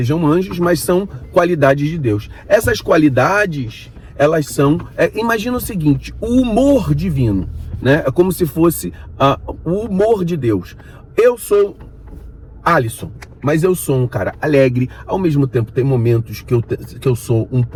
anjos, mas são qualidades de Deus. Essas qualidades, elas são, imagina o seguinte, o humor divino, né? É como se fosse o humor de Deus. Eu sou Alisson, mas eu sou um cara alegre, ao mesmo tempo tem momentos que eu sou um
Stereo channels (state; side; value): identical; both; correlation 1.00